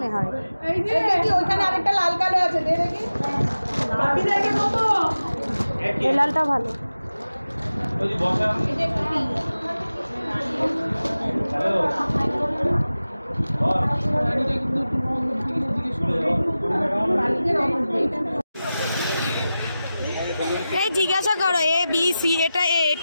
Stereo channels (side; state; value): both; inverted; correlation -0.94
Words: হয়। এই যে কি ওইখানে আরেকটা লাল কালো আছে, দে দেখি। বাটি দেখে কত? এই লালটা ভালো। ওই যে বসা এটা একটু পিঙ্ক। হ্যালো এই জিজ্ঞাসা করো A B C, এটা A,